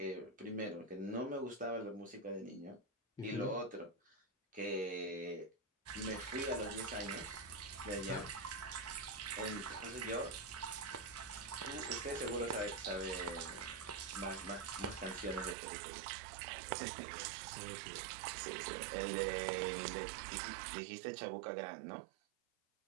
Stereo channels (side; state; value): left; drops out; at 15.6 s